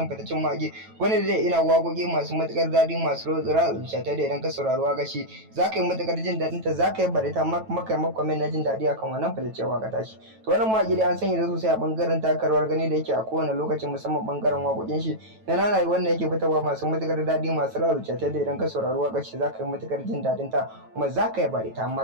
fitaccen mage wanda zai ina wagogi masu matukar dadi masu rotsira zuciya da idan ka saurari waka shi zaka yi matukar jin dadin ta, zaka yi barita maka comment na jin dadi akan wannan fitaccen waka tashi. To wannan mage dai an sanya da sosai a bangaren takarwar gani da yake a kowane lokacin musamman bangaren wakokin shi da nanayi wanda yake fitarwa masu matukar dadi masu rarruce ta da idan ka saurari wakar shi zaka yi matukar jin dadin ta kuma zaka yi bari ta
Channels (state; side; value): late; left; 9.1 ms